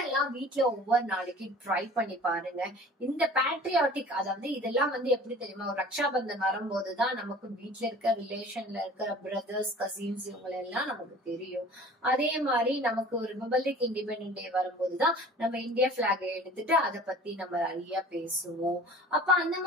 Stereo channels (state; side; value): normal; both; correlation 0.44